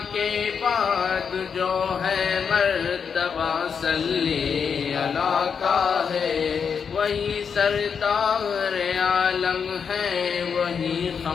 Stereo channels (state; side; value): quieter; right; 6.5 dB